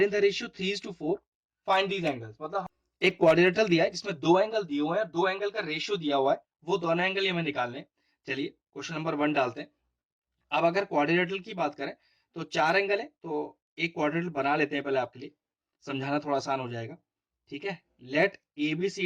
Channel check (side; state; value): both; identical; correlation 1.00